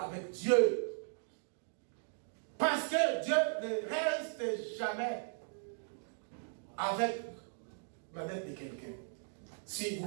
avec Dieu. Parce que Dieu ne reste jamais avec la dette de quelqu'un, si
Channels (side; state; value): left; silent; digital silence